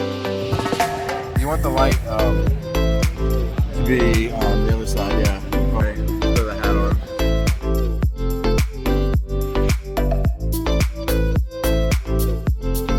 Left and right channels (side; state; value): both; identical; correlation 1.00